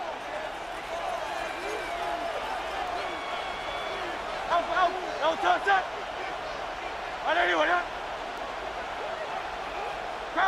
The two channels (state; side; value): identical; both; correlation 1.00